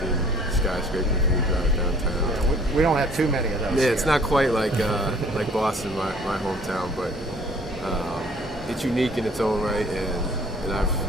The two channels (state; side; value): normal; both; correlation 0.54